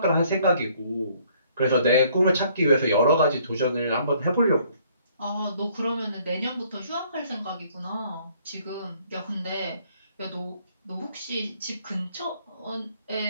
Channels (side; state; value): both; inverted; correlation -0.62